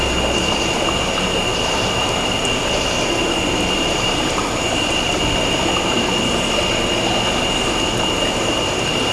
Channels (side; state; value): both; identical; correlation 1.00